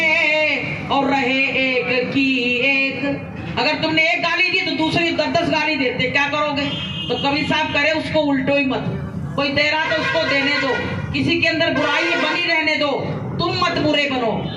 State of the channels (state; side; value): identical; both; correlation 1.00